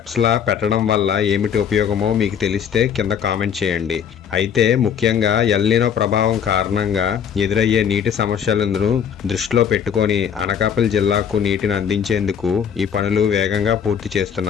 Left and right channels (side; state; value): right; quieter; 8.0 dB